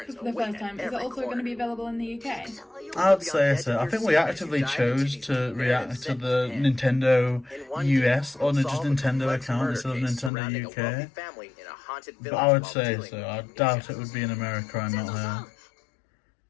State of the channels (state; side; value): drops out; right; at 10.3 s